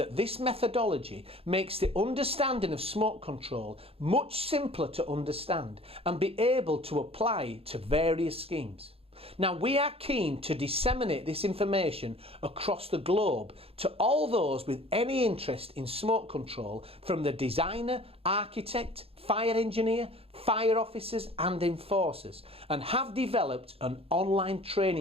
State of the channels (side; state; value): left; late; 0.28 ms